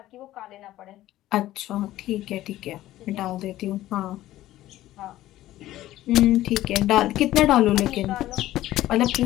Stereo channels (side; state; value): right; quieter; 14.8 dB